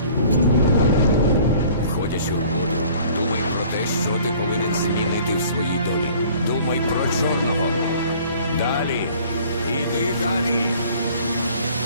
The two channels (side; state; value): both; inverted; correlation -0.52